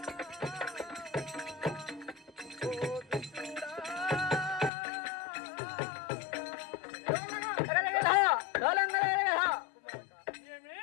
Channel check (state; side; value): drops out; right; at 4.7 s